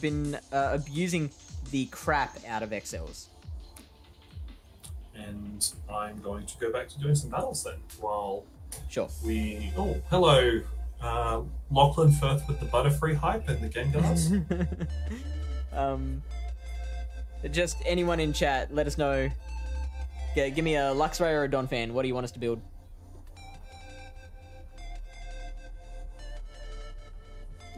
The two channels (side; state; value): both; identical; correlation 1.00